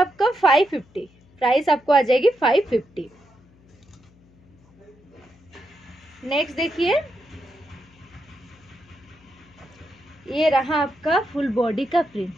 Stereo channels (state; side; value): noise; left; hum, 29 dB below the sound